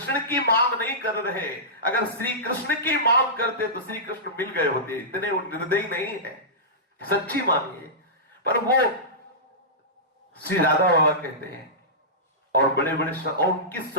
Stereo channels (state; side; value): normal; both; correlation -0.17